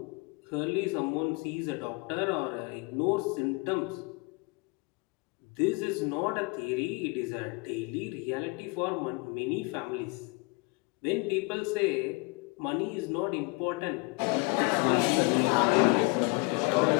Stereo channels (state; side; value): quieter; right; 29.7 dB